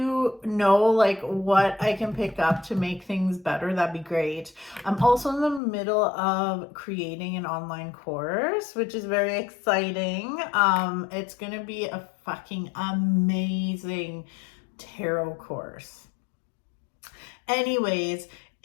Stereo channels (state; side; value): drops out; right; at 5.6 s